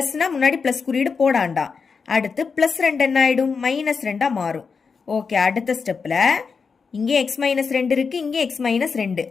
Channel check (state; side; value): quieter; right; 5.3 dB